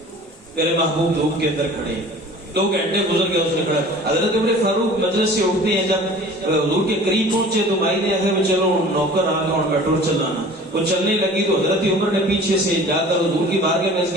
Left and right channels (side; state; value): both; normal; correlation 0.45